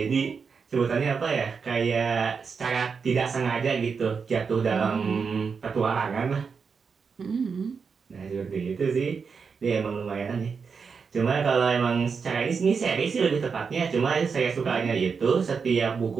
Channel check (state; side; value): quieter; left; 5.6 dB